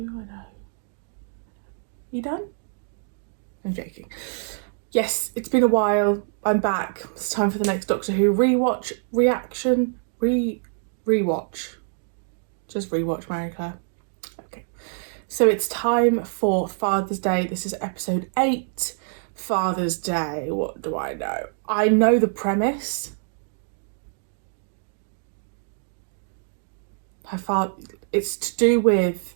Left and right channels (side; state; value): left; silent; digital silence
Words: You done? I'm joking. Yes, it's been a while. I'm back. It's time for the next Doctor Who rewatch, reaction, rewatch. Just rewatch, Marie-Clare. Okay. So it's time for Father's Day. This is episode 8, Father's Day. What do I know? I know the premise. Her father, it's to do